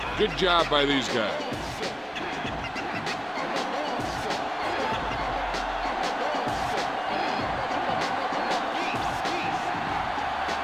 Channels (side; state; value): both; identical; correlation 1.00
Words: Good job by these guys.